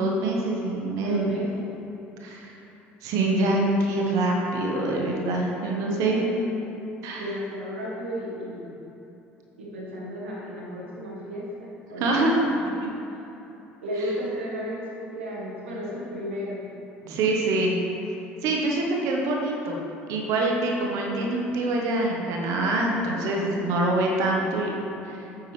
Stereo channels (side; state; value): both; normal; correlation 0.39